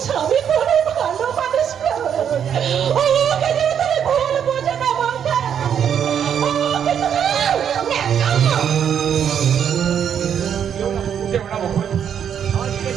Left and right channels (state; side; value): quieter; left; 8.5 dB